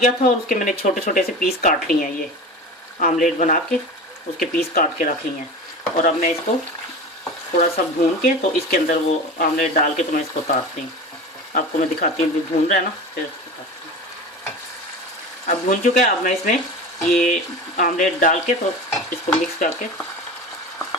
था और उसके मैंने छोटे छोटे से पीस काट लिए हैं। ये आमलेट बना के उसके पीस काट के रख लिए हैं, और अब मैं इसको थोड़ा सा भून के तो इसके अंदर वो आमलेट डाल के तो मैं इसको उतारती हूँ। आपको मैं दिखाती हूँ, भून रहा है ना, फिर उतारती हूँ। अब भून चुका है, अब मैं इसमें ये आमलेट डाल के तो इसको मिक्स करके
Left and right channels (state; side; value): normal; both; correlation 0.31